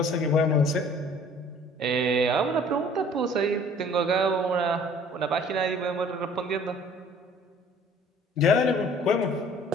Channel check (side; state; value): both; normal; correlation 0.52